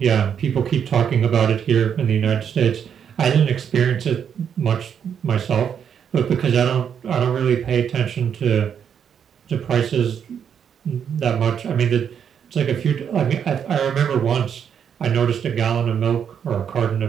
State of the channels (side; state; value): left; quieter; 8.0 dB